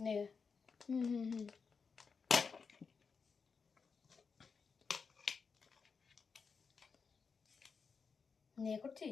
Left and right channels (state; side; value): quieter; right; 5.4 dB